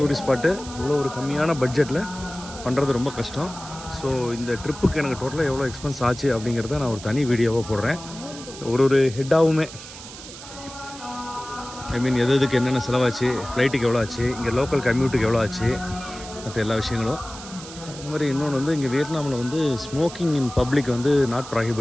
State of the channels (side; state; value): right; noise; hiss, 14 dB below the sound